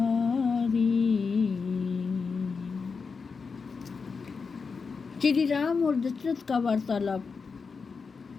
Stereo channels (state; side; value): quieter; right; 5.1 dB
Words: श्री राम और दशरथ का वार्तालाप।